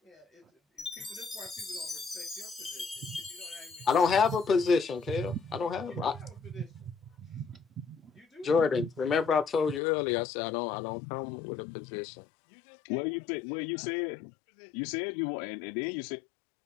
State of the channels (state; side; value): drops out; right; at 9.8 s